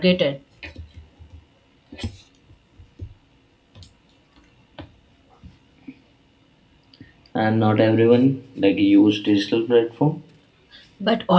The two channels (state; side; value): identical; both; correlation 1.00